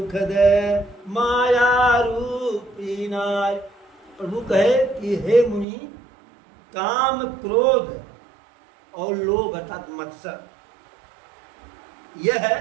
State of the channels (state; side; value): drops out; left; at 5.7 s